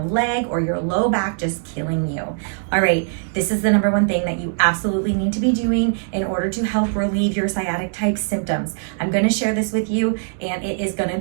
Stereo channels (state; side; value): silent; left; digital silence